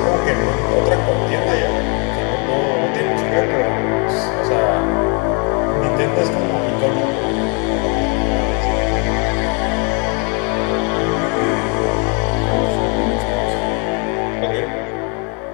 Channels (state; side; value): quieter; right; 35.3 dB